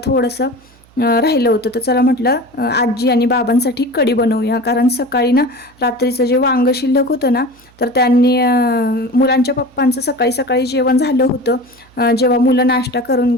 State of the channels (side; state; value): right; noise; hum, 29 dB below the sound